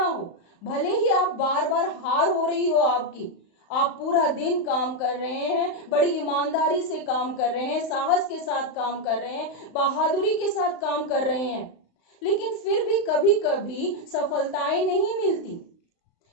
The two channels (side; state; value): right; late; 35 ms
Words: हो, भले ही आप बार बार हार हो रही हो आपकी, आप पूरा दिन काम कर रहे हैं, बड़ी ईमानदारी से काम कर रहे हैं, साहस के साथ काम कर रहे हैं, बहादुरी के साथ काम कर रहे हैं, लेकिन फिर भी कभी कभी सफलताएं नहीं मिलती।